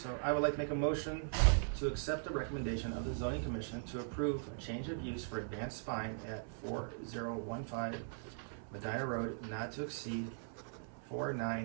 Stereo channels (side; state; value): left; silent; 51 dB below the other